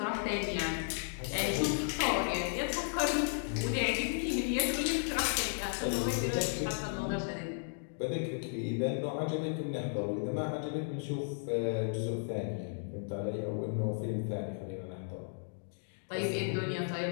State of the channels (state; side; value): silent; right; digital silence